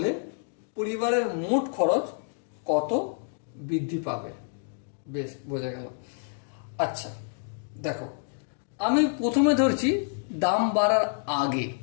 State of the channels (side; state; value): right; silent; digital silence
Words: পরিবারের মোট খরচ কত বৃদ্ধি পাবে? বেশ, বোঝা গেল। আচ্ছা, দেখো, আমি প্রথমে ধরছি দাম বাড়ার আগে